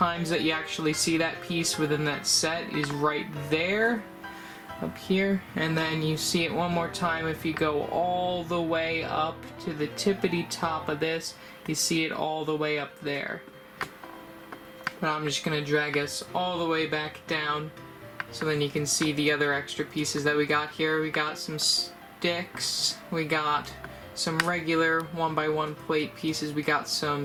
that you actually see that piece within that set is right there, up here, and then you see it one more time if you go all the way up to the tippity top of this. You see it all the way up there. But I'm just gonna drag us all the way back down so then you can see the other extra pieces that we got here. We got some sticks, we got some regular 1x1 plate pieces, we got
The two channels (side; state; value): both; identical; correlation 1.00